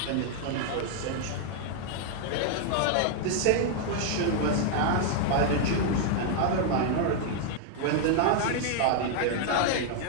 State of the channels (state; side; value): different; both; correlation 0.00